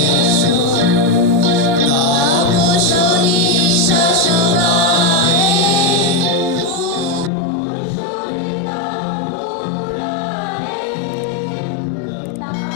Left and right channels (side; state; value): right; drops out; at 7.3 s